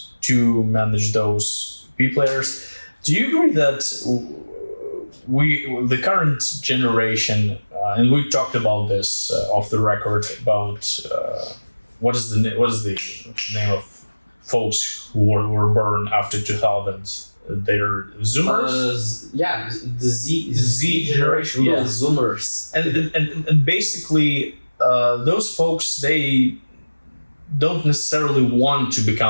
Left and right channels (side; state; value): both; inverted; correlation -1.00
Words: to manage those B players. Do you agree that the current generation, and we talked about this off the record about what is the name of folks who were born after 2000? They're Zoomers. The Z generation. Yeah, Zoomers. And basically, those folks, they don't necessarily want to